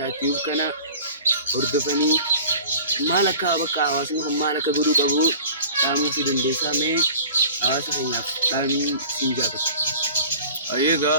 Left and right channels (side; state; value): both; inverted; correlation -0.42